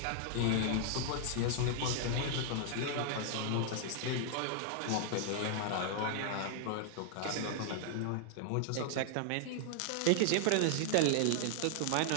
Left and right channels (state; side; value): different; both; correlation -0.01